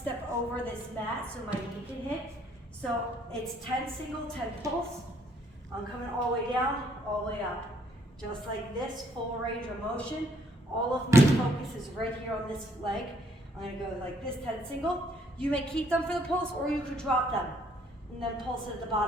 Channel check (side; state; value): both; normal; correlation 0.66